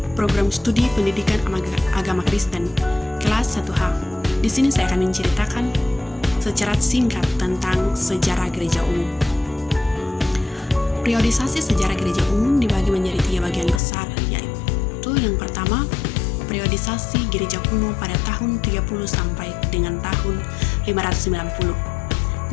program studi pendidikan agama Kristen, kelas 1H. Di sini saya akan menceritakan secara singkat tentang sejarah gereja umum. Periodisasi sejarah gereja umum dibagi menjadi 3 bagian besar, yaitu yang pertama, periodisasi gereja kuno pada tahun 30 sampai dengan tahun 590.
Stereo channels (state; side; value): drops out; right; at 13.8 s